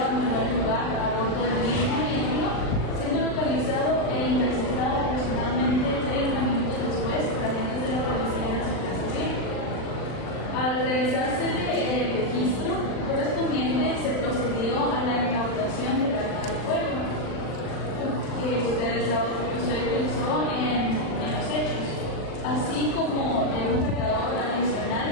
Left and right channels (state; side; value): late; right; 39 ms